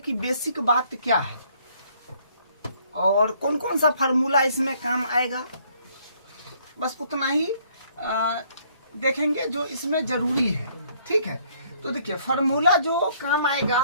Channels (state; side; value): inverted; both; correlation -0.64